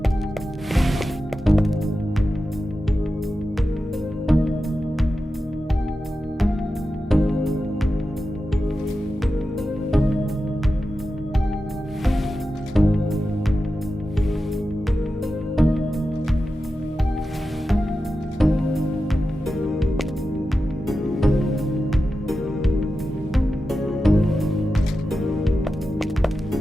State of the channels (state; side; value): normal; both; correlation 0.92